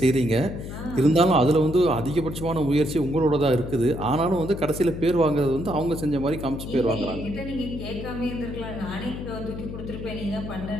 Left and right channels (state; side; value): noise; left; hum, 9 dB below the sound